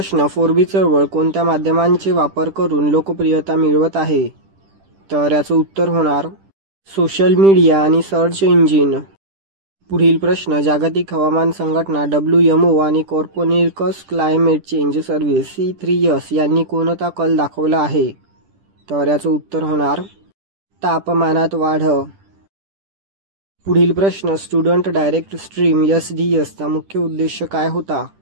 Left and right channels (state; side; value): late; left; 10 ms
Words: 4B चळवळ कोणत्या माध्यमांचे वापर करून लोकप्रियता मिळवत आहे? तर याचं उत्तर होणार सोशल मीडिया आणि सर्च इंजिन. पुढील प्रश्न, जागतिक हवामान संघटना WMO आणि कॉर्पोनिकस क्लायमेट चेंज सर्व्हिस C3S यांनी कोणता कल दाखवला आहे? तर याचं उत्तर होणार तापमानात वाढ. पुढील प्रश्न, स्टुडंट डायरेक्ट स्ट्रीम SDS चा मुख्य उद्देश काय होता?